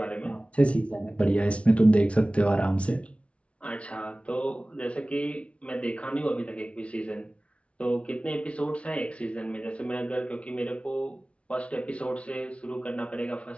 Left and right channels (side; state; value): right; late; 0.062 ms